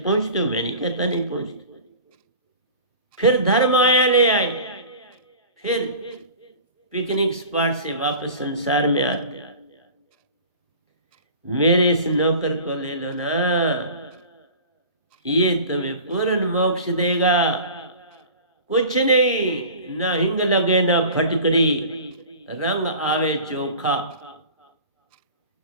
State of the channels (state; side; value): inverted; both; correlation -0.40